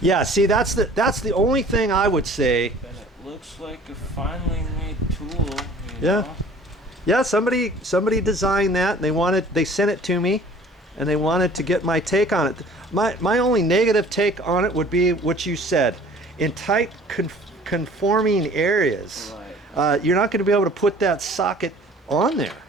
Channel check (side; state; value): both; normal; correlation 0.50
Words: Yeah, see, that's the only thing I would say. And it looks like a finely made tool, Yeah. Yeah, somebody designed that and they sent it to me and they wanted to get my take on it. My only negative take on it would be what you said. In tight conforming areas, Right. you're not going to be able to put that socket on there.